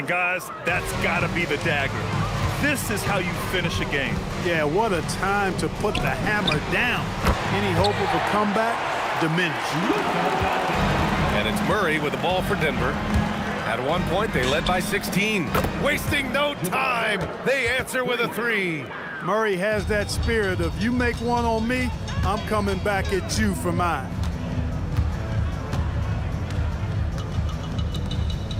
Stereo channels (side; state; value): both; identical; correlation 1.00